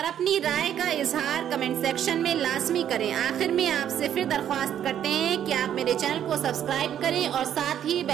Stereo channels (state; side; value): quieter; left; 10.1 dB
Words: اپنی رائے کا اظہار کمنٹ سیکشن میں لازمی کریں۔ آخر میں آپ سے پھر درخواست کرتے ہیں کہ آپ میرے چینل کو سبسکرائب کریں اور ساتھ ہی